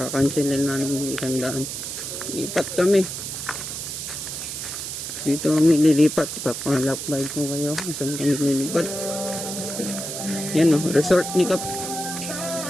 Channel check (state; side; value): noise; right; hiss, 6 dB below the sound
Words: na namin 100. Lipat kami. Dito kami lilipat. Papalapay ko kayo. Saan kami lilipat? Yan o. Resort ni Kap.